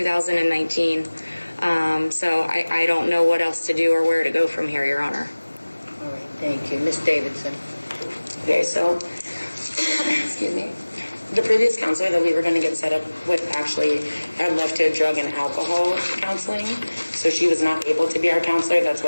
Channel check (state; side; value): inverted; both; correlation -1.00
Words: So I don't know what else to do or where to go from here, Your Honor. All right, thank you. Ms. Davidson. Okay, so, excuse me. The previous counselor that we were going to get set up with actually had left to drug and alcohol counseling, so she was not able to be our counselor. That's